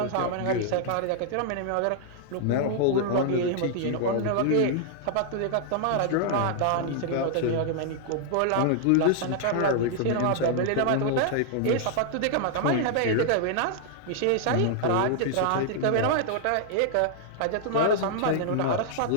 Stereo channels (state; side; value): different; both; correlation -0.01